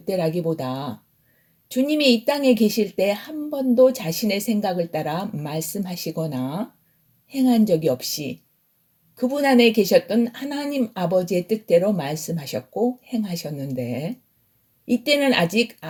주님이 이 땅에 계실 때 한 번도 자신의 생각을 따라 말씀하시거나 행한 적이 없이 그분 안에 계셨던 하나님 아버지의 뜻대로 말씀하셨고 행하셨는데 이때는 아직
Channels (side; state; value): both; identical; correlation 1.00